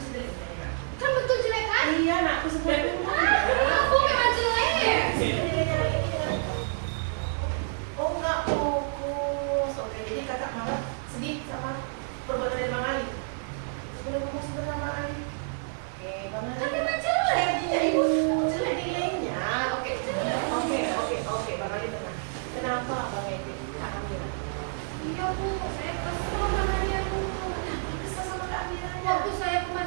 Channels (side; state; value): left; silent; digital silence